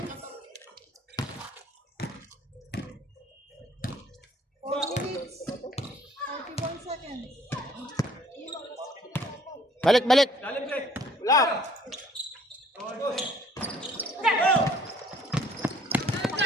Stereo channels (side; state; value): both; normal; correlation 0.58